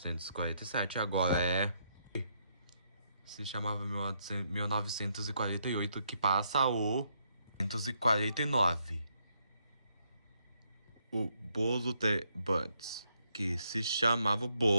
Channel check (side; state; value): both; inverted; correlation -0.75